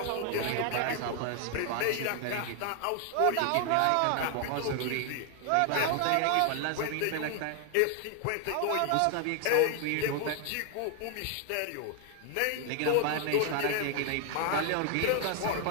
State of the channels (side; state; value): both; different; correlation 0.00